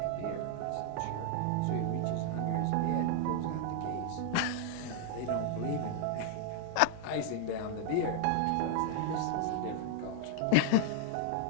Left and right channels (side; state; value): both; different; correlation 0.00